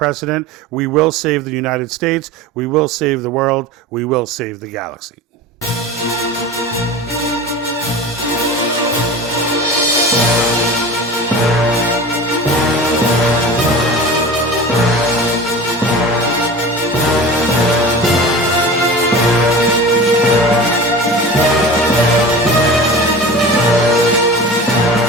We will save the United States. We will save the world. We will save the galaxy.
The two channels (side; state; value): both; normal; correlation 0.34